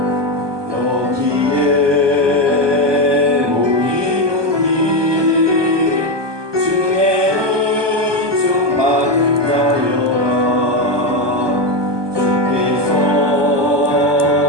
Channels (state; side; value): late; left; 1.2 ms